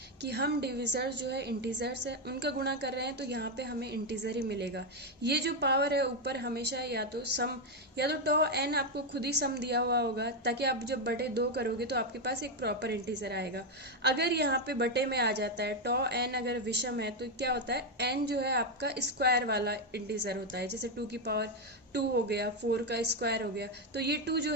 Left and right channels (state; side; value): normal; both; correlation 0.05